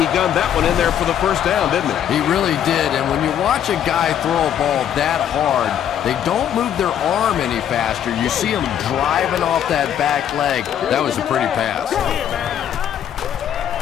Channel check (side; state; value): right; quieter; 9.8 dB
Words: gunned that one in there for the first down, didn't he? He really did, and when you watch a guy throw a ball that hard, they don't move their arm any faster. You see him driving off that back leg. That was a pretty pass.